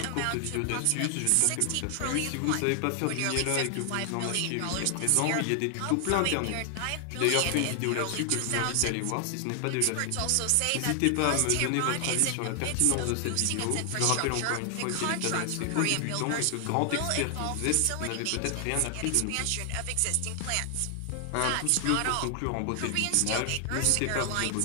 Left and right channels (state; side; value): different; both; correlation 0.00